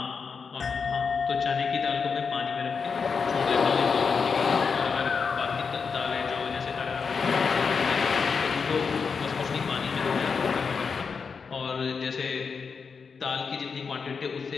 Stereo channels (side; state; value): right; quieter; 5.5 dB